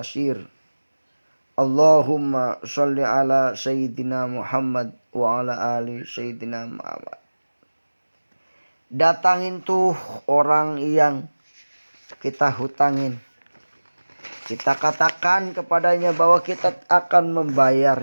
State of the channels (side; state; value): both; inverted; correlation -1.00